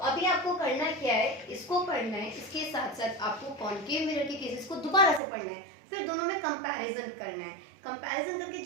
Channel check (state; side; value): drops out; left; at 5.2 s